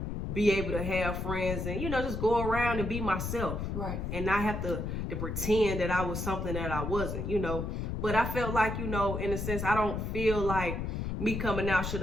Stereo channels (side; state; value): left; noise; rumble, 3 dB below the sound